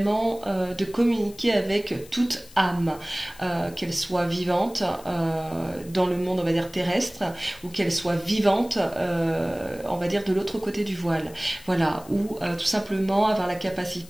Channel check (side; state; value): left; noise; hiss, 21 dB below the sound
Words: de communiquer avec toute âme, qu'elle soit vivante dans le monde, on va dire, terrestre, ou qu'elle soit vivante, on va dire, de l'autre côté du voile. Voilà, ou tout simplement avoir la